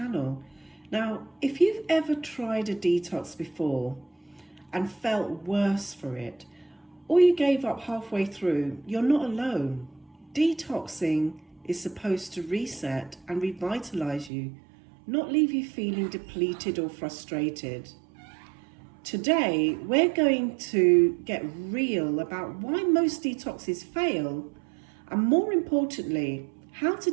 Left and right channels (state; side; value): drops out; left; at 14.3 s